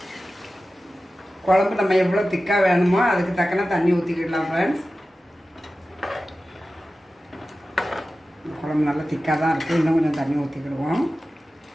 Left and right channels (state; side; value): normal; both; correlation 0.95